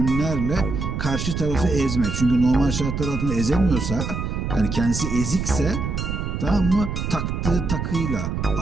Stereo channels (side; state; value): right; noise; rumble, 3 dB below the sound